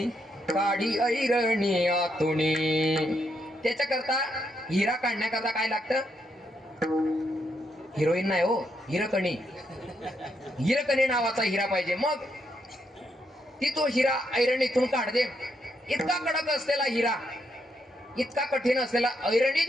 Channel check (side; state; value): both; normal; correlation 0.78